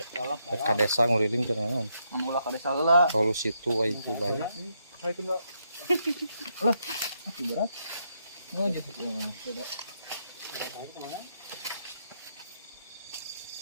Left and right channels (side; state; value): both; inverted; correlation -0.78